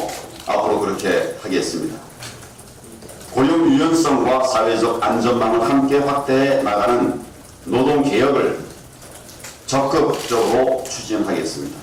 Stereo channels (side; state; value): both; identical; correlation 1.00